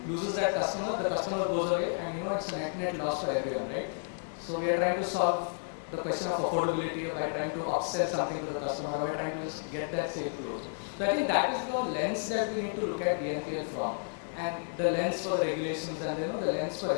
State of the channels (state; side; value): silent; right; 55 dB below the other